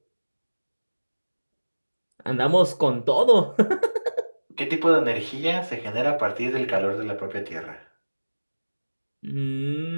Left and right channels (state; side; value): inverted; both; correlation -1.00